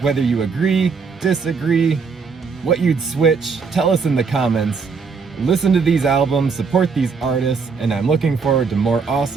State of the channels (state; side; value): quieter; left; 5.2 dB